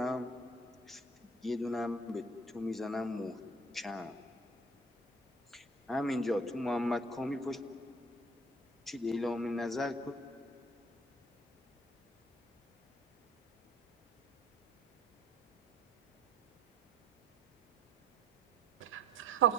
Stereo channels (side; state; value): both; normal; correlation 0.53